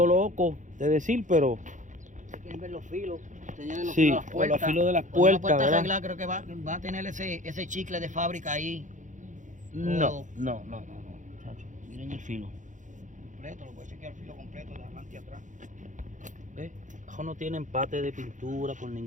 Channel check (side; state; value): left; late; 0.36 ms